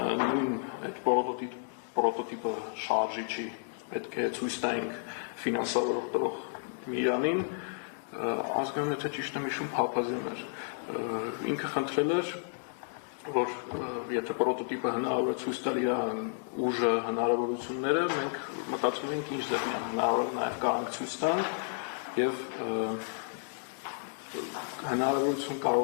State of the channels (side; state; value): right; silent; digital silence